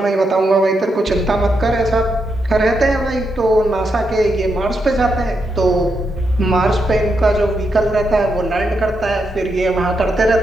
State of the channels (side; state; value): both; normal; correlation 0.82